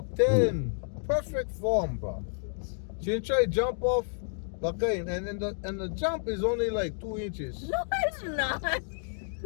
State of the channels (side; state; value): right; silent; 58 dB below the other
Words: 10. Perfect form, bro. She didn't try to jump off. Okay, and the jump is only like 2 inches. No, it's not. It